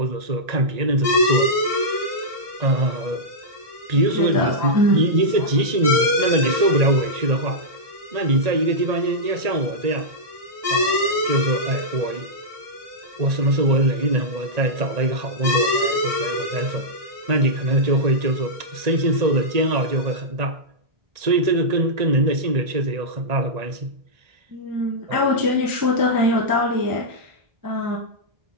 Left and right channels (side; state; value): left; late; 1.8 ms